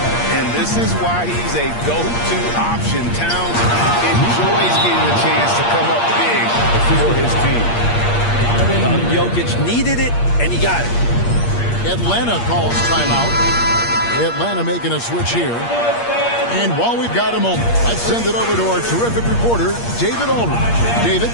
And this is why he's a go-to option. Towns enjoys getting a chance to come up big for his team. Jokic needed it, and he got it. Atlanta calls timeout. Atlanta making a switch here. And while we've got a moment, let's send it over to our terrific reporter, David Aldridge. David?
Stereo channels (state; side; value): late; right; 8.5 ms